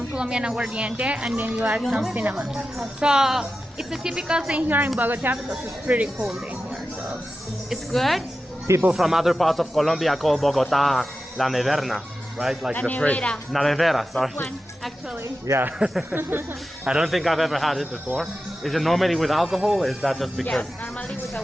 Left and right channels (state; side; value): normal; both; correlation 0.92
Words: Colombian aguardiente, and then you add some cinnamon. So it's a typical thing here in Bogotá because it's pretty cold in here. So it's good. People from other parts of Colombia call Bogotá la neverna, right? Like La the nevera. fridge. La nevera, sorry. This one, actually. Yeah. I don't think I've ever had it before. Is it normally with alcohol? Or is that just because? Yes, normally with